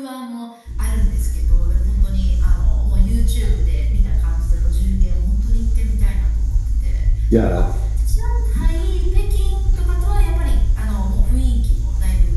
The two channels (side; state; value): both; identical; correlation 1.00